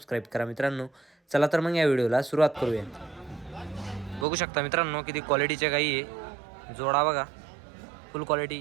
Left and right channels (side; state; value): left; drops out; at 4.2 s